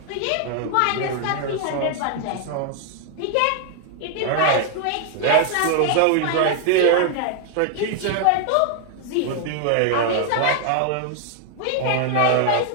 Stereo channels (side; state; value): both; different; correlation 0.00